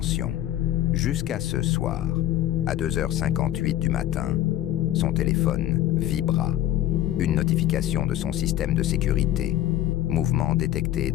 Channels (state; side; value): quieter; right; 13.2 dB